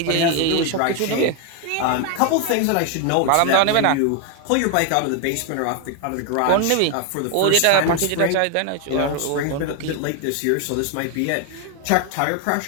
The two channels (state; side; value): different; both; correlation 0.01